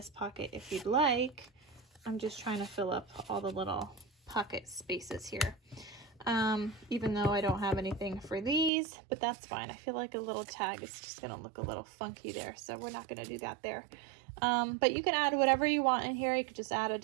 pocket if you'd like. I'm just trying to fill up all the little pocket spaces here. Even though I don't have anything for these, but that's fine. I feel like a little tag is just gonna look a little funky there, so we're not gonna do that there. But you can add whatever you want in here. You could just add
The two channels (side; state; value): left; drops out; at 8.7 s